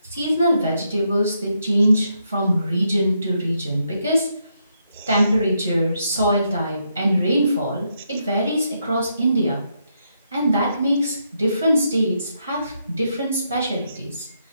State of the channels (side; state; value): both; inverted; correlation -0.79